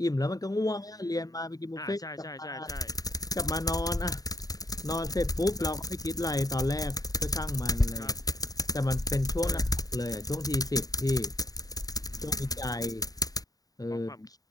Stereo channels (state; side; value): late; right; 0.18 ms